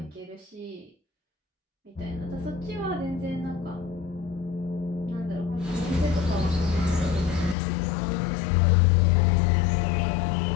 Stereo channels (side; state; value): right; drops out; at 7.6 s